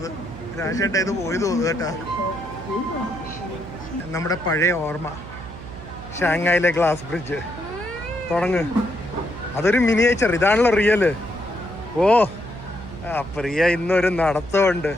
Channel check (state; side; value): noise; right; hum, 14 dB below the sound